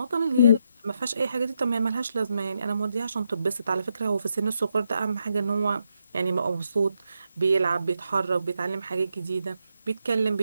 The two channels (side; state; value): both; inverted; correlation -0.81